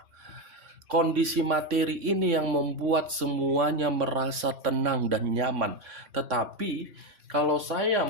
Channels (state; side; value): late; left; 3.5 ms